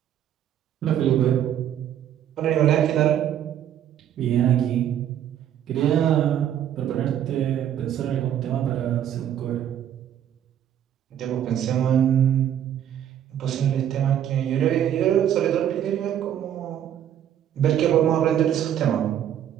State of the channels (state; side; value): quieter; left; 10.3 dB